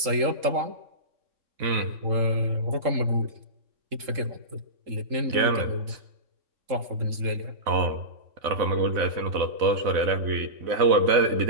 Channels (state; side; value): late; left; 3.8 ms